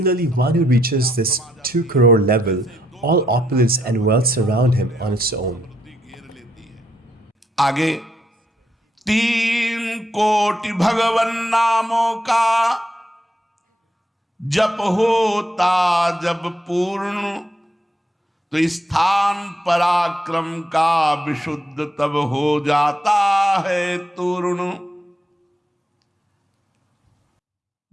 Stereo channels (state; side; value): normal; both; correlation 0.77